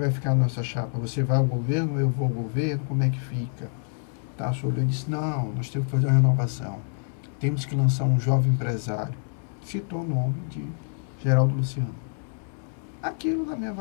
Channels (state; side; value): silent; right; 61 dB below the other